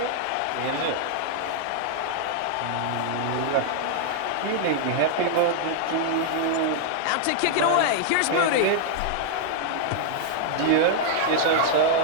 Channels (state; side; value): different; both; correlation -0.01